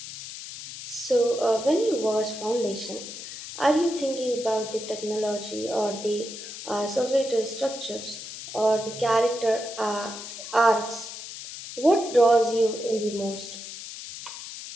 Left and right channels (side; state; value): left; noise; hiss, 11 dB below the sound